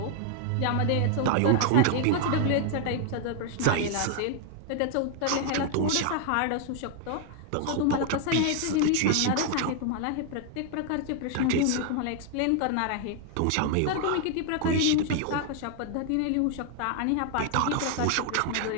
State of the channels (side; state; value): both; different; correlation 0.00